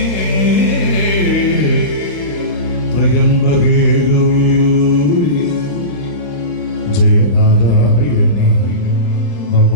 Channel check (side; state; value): right; late; 35 ms